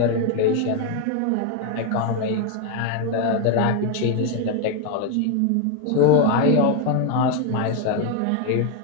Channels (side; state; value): both; different; correlation 0.01